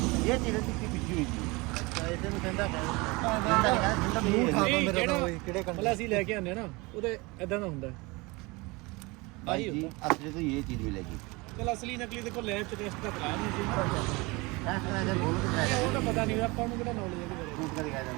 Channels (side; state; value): left; quieter; 25.0 dB